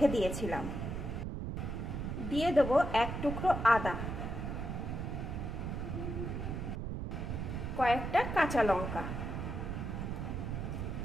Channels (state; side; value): noise; right; rumble, 4 dB below the sound